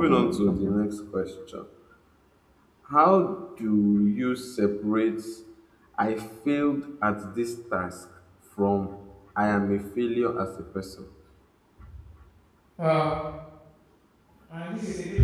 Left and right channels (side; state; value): both; identical; correlation 1.00